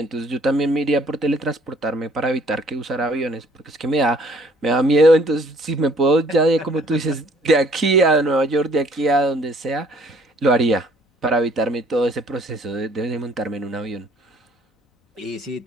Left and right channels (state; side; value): normal; both; correlation 0.59